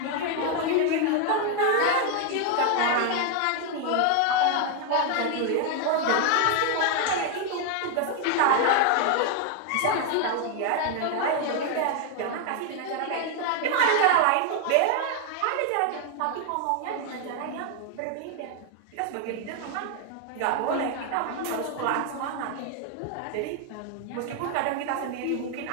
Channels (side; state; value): both; different; correlation 0.00